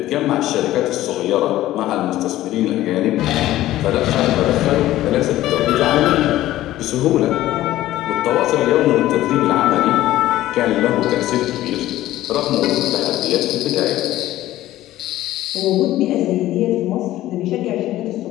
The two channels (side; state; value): right; quieter; 14.9 dB